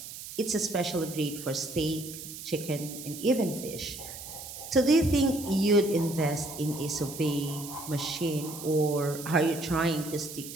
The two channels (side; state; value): right; noise; hiss, 11 dB below the sound